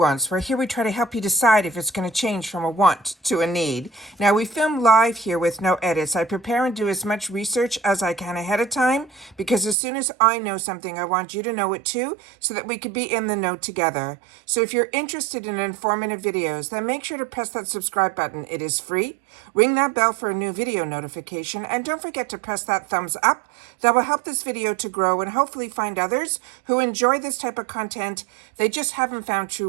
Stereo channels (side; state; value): left; drops out; at 9.8 s